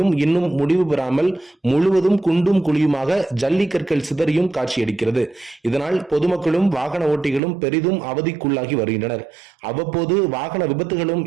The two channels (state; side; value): drops out; left; at 7.4 s